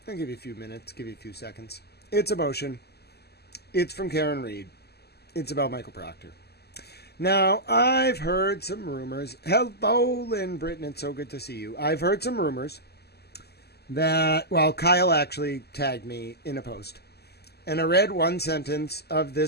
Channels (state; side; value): late; right; 0.47 ms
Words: I'll give you a few minutes, give you a few seconds. It's a motion. It's from Karen Reed. It's about Michael Proctor. Now, I've heard some rumors. Hello, Lynn Britton. It's so good to see you. I've heard some rumors that, well, Kyle actually tagged me in a post. And I read one sentence of